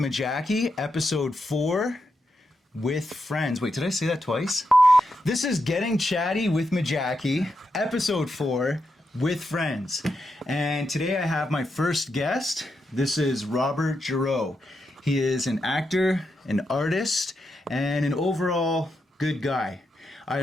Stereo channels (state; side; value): normal; both; correlation 0.85